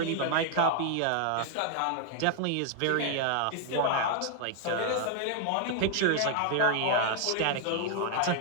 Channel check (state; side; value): different; both; correlation 0.00